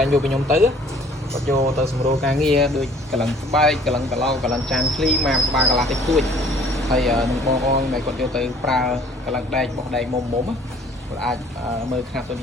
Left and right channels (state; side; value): normal; both; correlation 0.54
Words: ែងយកពីខ្ញុំទៅគាត់យកទៅសម្រួលការងារដូចកលឹងស្បែកកលឹងកឡោកលឹងចានឃ្លីម៉ាក្បាលកន្លះតិចតួចហើយនឹងបងប្អូនដែលគាត់យកទៅប្រើកលឹងដែកបោះដែកមុំគាត់អាចមើលខ្នាតន